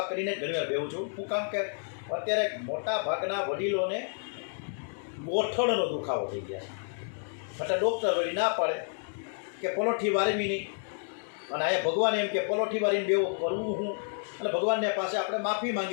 કરીને જ ઘણી વાર બેહું છું. શું કામ કે અત્યારે મોટા ભાગના વડીલોને ગોઠણનો દુખાવો થઈ ગયા છે, એટલે ડૉક્ટર વળી ના પાડે કે પલોઠી વારવી નહીં. અને અહીંયા ભગવાન એમ કે પલોઠી વારીને બેવું કરવું હું. અને ભગવાનને પાસે આપણે માફી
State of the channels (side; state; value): right; silent; 58 dB below the other